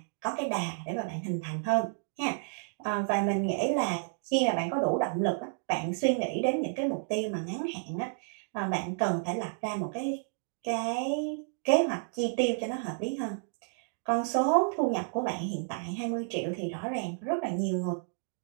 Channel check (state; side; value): silent; left; digital silence